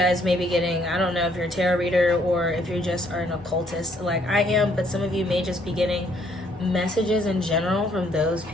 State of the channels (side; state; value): both; normal; correlation 0.67